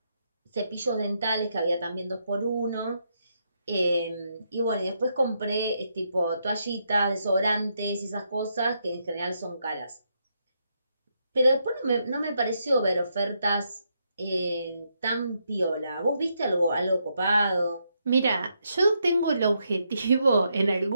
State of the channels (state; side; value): inverted; both; correlation -0.79